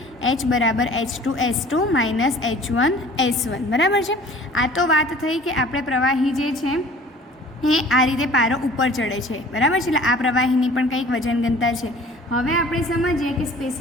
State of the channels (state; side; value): normal; both; correlation 0.48